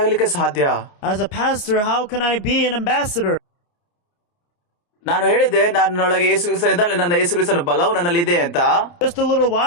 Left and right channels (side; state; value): right; late; 29 ms